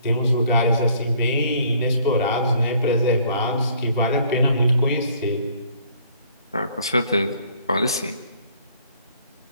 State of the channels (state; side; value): inverted; both; correlation -0.60